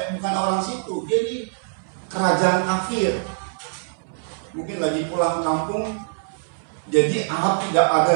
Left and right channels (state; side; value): silent; left; 63 dB below the other